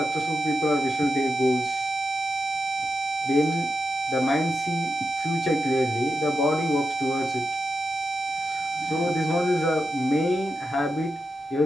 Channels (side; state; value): both; normal; correlation 0.88